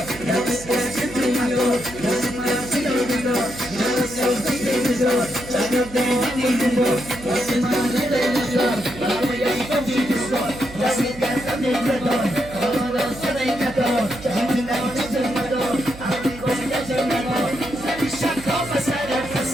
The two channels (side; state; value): right; noise; hum, 15 dB below the sound